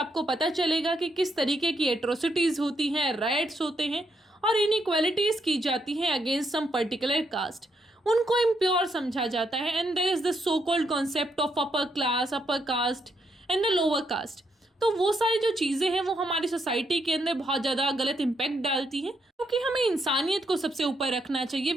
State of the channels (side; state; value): both; normal; correlation 0.77